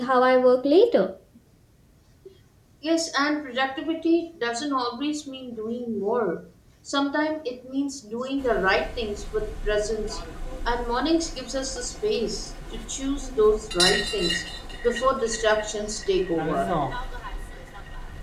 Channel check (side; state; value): both; identical; correlation 1.00